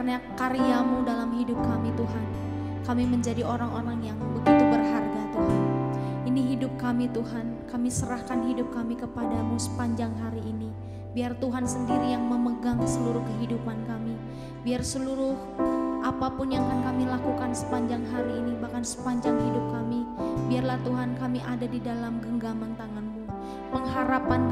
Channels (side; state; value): both; identical; correlation 1.00